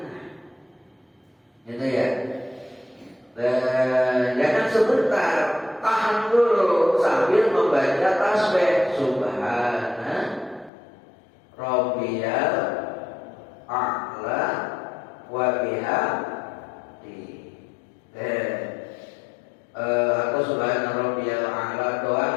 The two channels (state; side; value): drops out; right; at 10.7 s